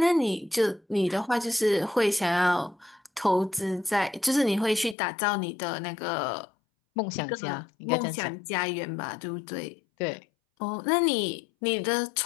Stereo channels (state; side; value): drops out; right; at 5.0 s